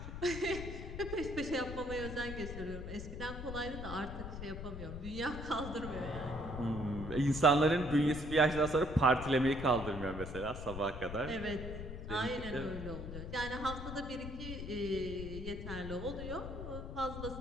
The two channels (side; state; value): left; noise; rumble, 8 dB below the sound